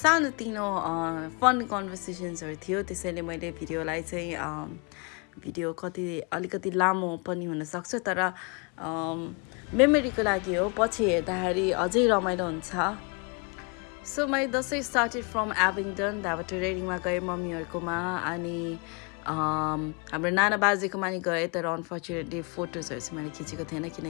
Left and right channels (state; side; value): quieter; right; 32.8 dB